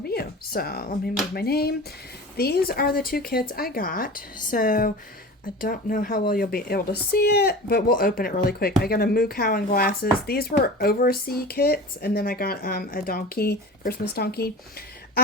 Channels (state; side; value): normal; both; correlation 0.35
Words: you. So let me move my name. These are the two kits I got. So I don't know how well you'll be able to see it, but we'll open it really quick. I got a moo cow and glasses. These were overseas kits, and then I got a donkey, Christmas donkey.